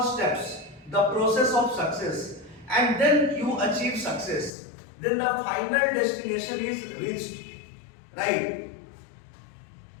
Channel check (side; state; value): right; drops out; at 4.5 s